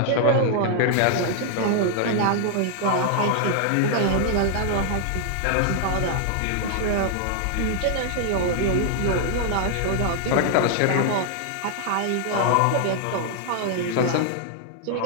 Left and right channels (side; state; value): both; different; correlation 0.00